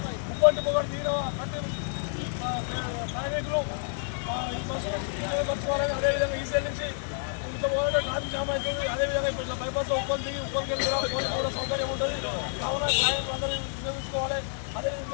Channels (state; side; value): silent; right; 59 dB below the other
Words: ముప్పటి పొగడు దిగిన ప్రతి ప్రయాణికులు ఈ బస్సు ఉపయోగపరచుకోవాలని, అదేవిధంగా ఈసీఎల్ నుంచి ఇంత మొదలు ట్రాఫిక్ జామ్ అవుతుంది. అదేవిధంగా ఇప్పుడు ఇట్లా బైపాస్ ఉప్పల్ దిగి ఉప్పల్కి వెళ్ళి పోలీసు కూడా సౌకర్యం ఉంటుంది. కావున ప్రయాణికులు అందరూ ఉపయోగించుకోవాలి. అదే